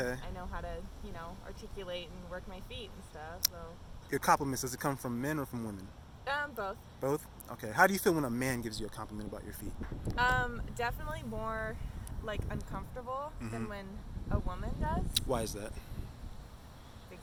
I know how to, articulate and work my feet and stuff. So. Your compliments, does it come from men or from women? Both. Both? Okay. How do you feel when a man gives you a compliment about your feet? Definitely more like uncomfortable than when a woman does. Why is that?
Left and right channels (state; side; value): identical; both; correlation 1.00